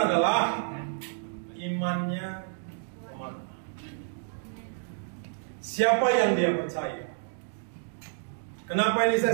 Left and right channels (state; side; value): silent; left; digital silence